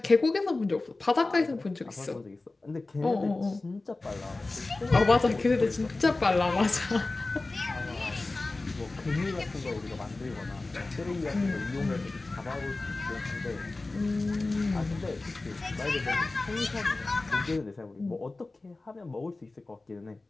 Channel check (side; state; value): right; quieter; 3.3 dB